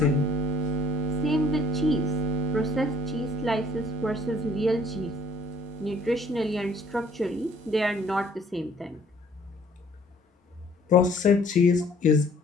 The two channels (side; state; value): both; normal; correlation 0.58